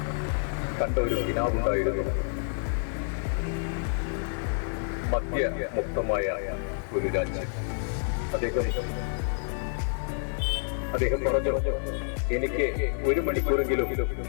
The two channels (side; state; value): right; silent; digital silence